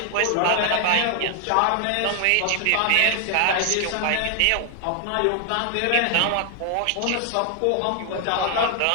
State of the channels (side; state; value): both; different; correlation 0.00